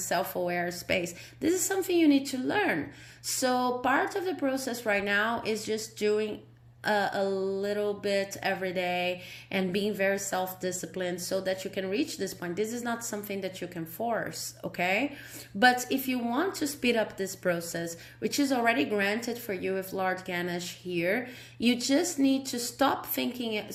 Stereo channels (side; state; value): both; identical; correlation 1.00